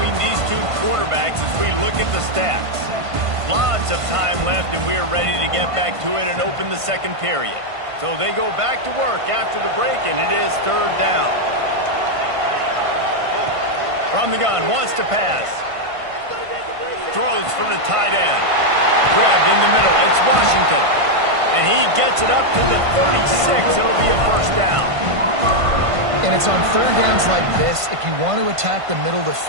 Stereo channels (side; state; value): left; late; 1.5 ms